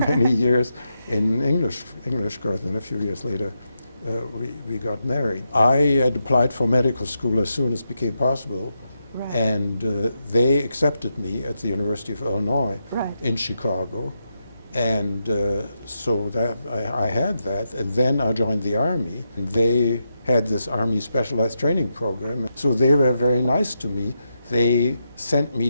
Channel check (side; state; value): both; inverted; correlation -0.85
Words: years in English course, and a few years later we got married. I had applied for medical school as soon as it became possible. Right. And they accepted me at the University of Illinois Right. in Chicago. And so that I had that. And then I joined the Army. And they had this Army Specialized Training Program. So they were very nice to me. They sent me